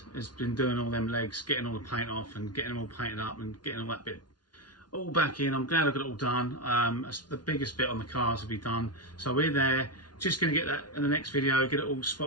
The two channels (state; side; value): late; right; 0.70 ms